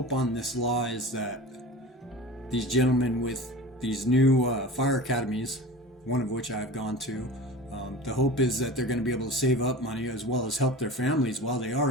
on this law is that these gentlemen with these new fire academies, one of which I've gone to, the hope is that they're going to be able to save up money as well as help their families while they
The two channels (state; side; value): normal; both; correlation 0.35